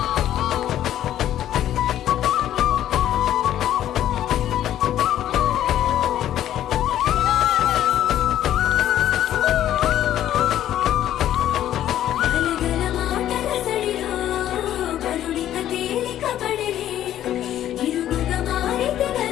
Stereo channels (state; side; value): quieter; right; 11.9 dB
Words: గలగల మాటల సడిలో కరుణిక తేలిక పడిలే ఇరుగుగా మారితే